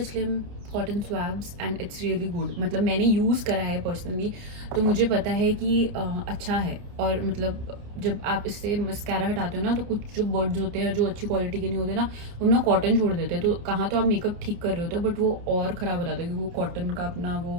slim cotton swabs and it's really good. मतलब मैंने यूज़ करा है पर्सनली, तो मुझे पता है कि अच्छा है. और मतलब जब आप इससे मस्कारा हटाते हो ना, तो कुछ जो बर्ड्स होते हैं जो अच्छी क्वालिटी के नहीं होते ना, वो ना कॉटन छोड़ देते हैं. तो कहाँ तो आप मेकअप ठीक कर रहे होते हो, बट वो और ख़राब हो जाता है क्योंकि वो कॉटन का अपना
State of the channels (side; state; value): left; late; 29 ms